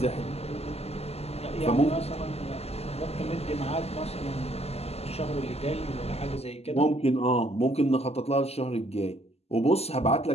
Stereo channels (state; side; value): late; right; 0.29 ms